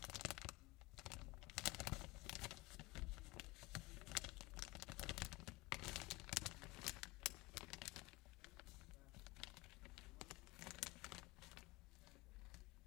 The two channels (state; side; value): quieter; right; 22.1 dB